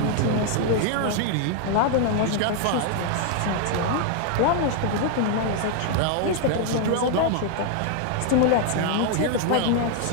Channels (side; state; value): both; different; correlation 0.00